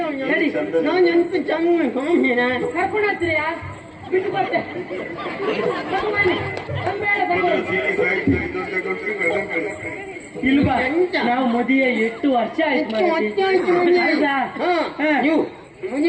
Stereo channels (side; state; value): both; identical; correlation 1.00